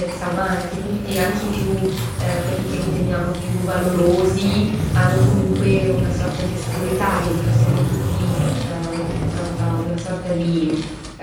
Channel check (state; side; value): identical; both; correlation 1.00